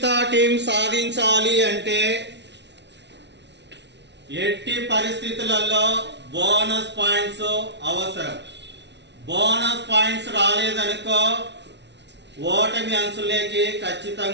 టీం సాధించాలి అంటే ఎట్టి పరిస్థితులలో బోనస్ పాయింట్స్ అవసరం. బోనస్ పాయింట్స్ రాలేదనుకో ఓటమి అంచులేకి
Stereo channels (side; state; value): left; late; 0.50 ms